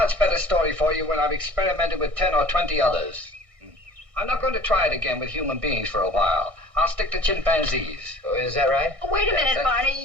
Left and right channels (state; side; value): late; left; 1.6 ms